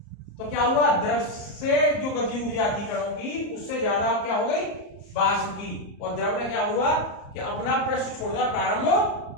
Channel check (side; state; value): right; late; 34 ms